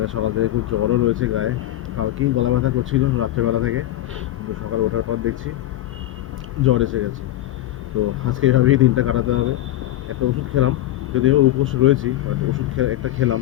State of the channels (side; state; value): right; quieter; 14.2 dB